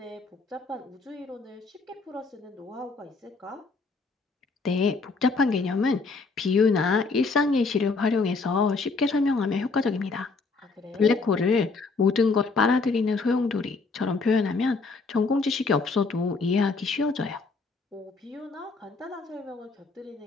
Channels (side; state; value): right; quieter; 4.0 dB